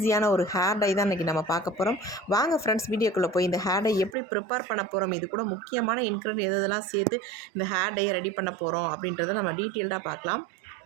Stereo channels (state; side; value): drops out; left; at 4.2 s